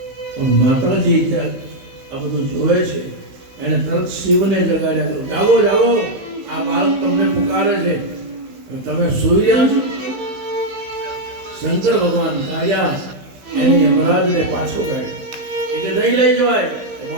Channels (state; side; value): late; left; 16 ms